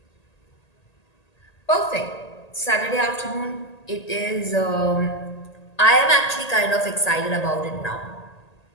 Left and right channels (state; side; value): late; right; 1.8 ms